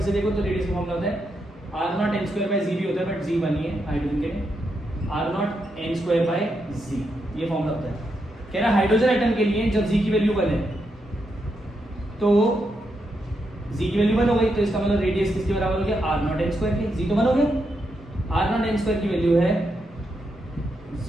से देखो तो रेडियस का फॉर्मूला होता है r0n²/z भी होता है, बट z बनी है हाइड्रोजन के लिए, r0n²/z ये फॉर्मूला होता है। कह रहा है हाइड्रोजन एटम के लिए जब z की वैल्यू 1 है तो z की वैल्यू 1 हो गई, तो इसका मतलब रेडियस किसके बराबर हो गया, r0n² के, z तो 1 हो गया, r0n² की वैल्यू है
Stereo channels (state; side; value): normal; both; correlation 0.82